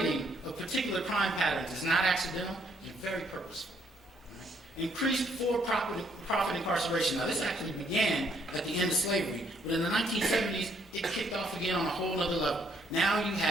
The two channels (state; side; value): normal; both; correlation 0.69